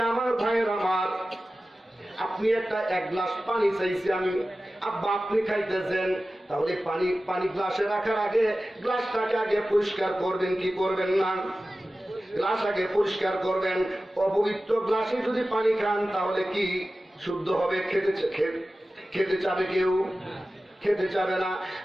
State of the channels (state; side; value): normal; both; correlation 0.95